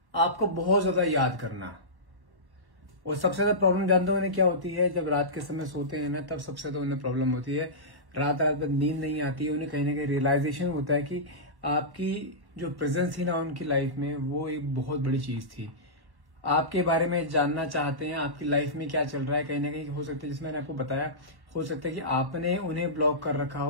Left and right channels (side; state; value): left; late; 1.1 ms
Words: आपको बहुत ज्यादा याद करना। और सबसे ज्यादा प्रॉब्लम जानते हो उन्हें क्या होती है, जब रात के समय सोते हैं ना, तब सबसे ज्यादा उन्हें प्रॉब्लम होती है। रात भर नींद नहीं आती है, उन्हें कहीं ना कहीं रियलाइजेशन होता है कि आपकी जो प्रेजेंस थी ना उनकी लाइफ में, वो एक बहुत बड़ी चीज थी। आपके बारे में जानना चाहते हैं, आपकी लाइफ में क्या चल रहा है। कहीं ना कहीं हो सकता है, जिसमें मैंने आपको बताया, हो सकता है कि आपने उन्हें ब्लॉक कर रखा